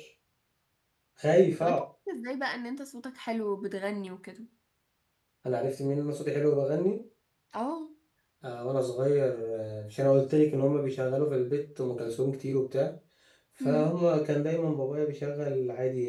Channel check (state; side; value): identical; both; correlation 1.00